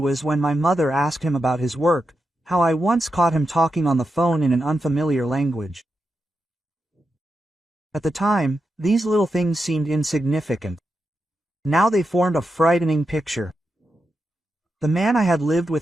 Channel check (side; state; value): both; normal; correlation 0.87